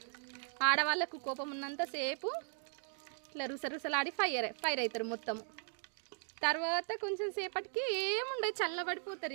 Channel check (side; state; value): left; silent; 52 dB below the other